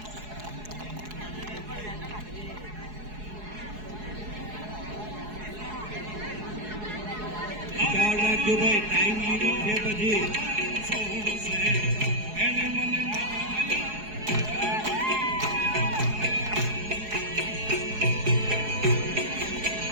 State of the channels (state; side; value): late; left; 4.7 ms